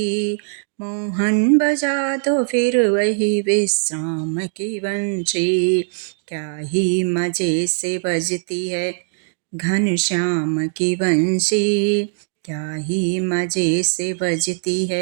मोहन बजा दो फिर वही विश्राम की बंसी। क्या ही मजे से बजती है घनश्याम की बंसी, क्या ही मजे से बजती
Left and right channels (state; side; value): silent; left; 65 dB below the other